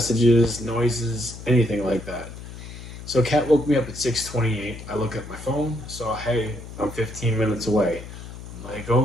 noises, anything like that. So Kat woke me up at 6:28. I look at my phone, saw, hey, I'm 15 minutes away. I'm like,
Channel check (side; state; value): left; noise; hum, 12 dB below the sound